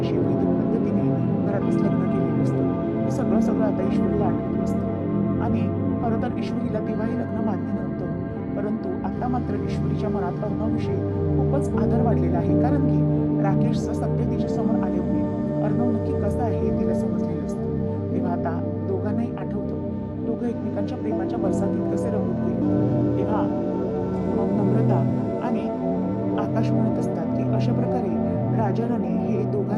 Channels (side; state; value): both; identical; correlation 1.00